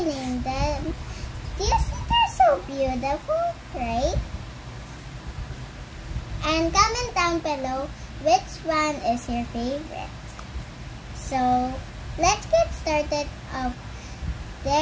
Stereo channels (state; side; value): identical; both; correlation 1.00